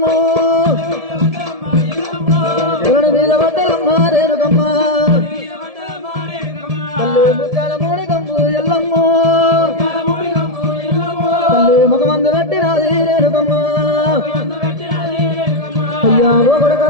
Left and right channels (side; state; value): left; late; 1.7 ms